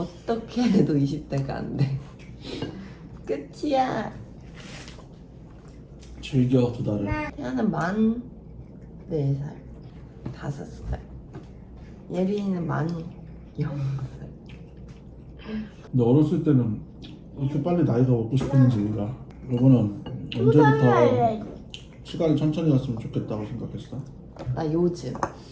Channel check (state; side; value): identical; both; correlation 1.00